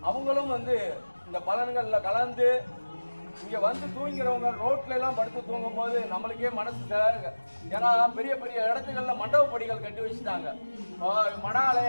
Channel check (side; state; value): both; inverted; correlation -1.00